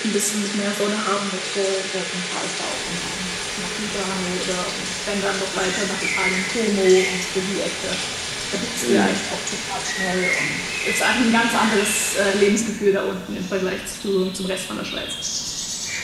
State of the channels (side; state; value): both; identical; correlation 1.00